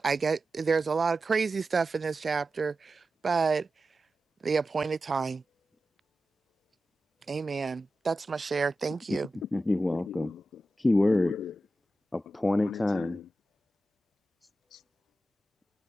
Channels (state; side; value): normal; both; correlation 0.93